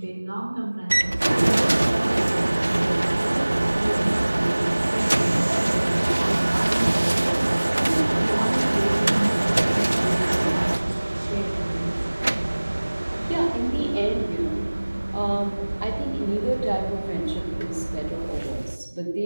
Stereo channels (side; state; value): both; inverted; correlation -1.00